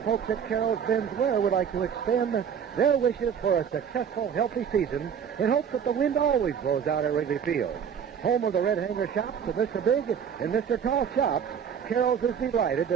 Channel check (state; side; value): quieter; left; 7.7 dB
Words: folks at Carol's Ben's Wear would like to extend their wishes for a successful, healthy season in hopes that the wind always blows out at Wrigley Field. Home of the Red Hanger Shops of Mr. Big and Mr. Tall Shops, Carol's is delighted